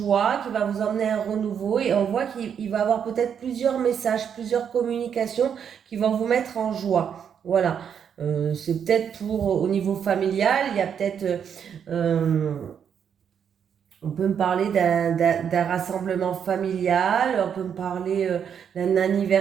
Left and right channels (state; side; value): quieter; left; 7.9 dB